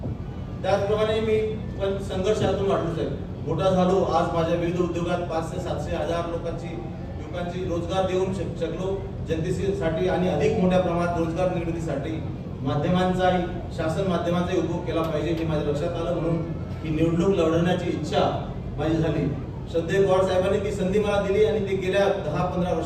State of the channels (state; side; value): identical; both; correlation 1.00